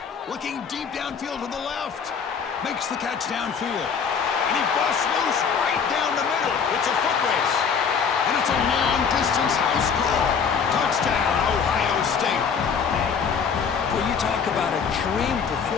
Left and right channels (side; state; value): right; quieter; 6.4 dB